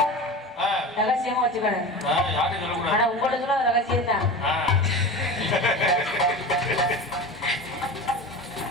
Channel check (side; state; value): both; normal; correlation 0.31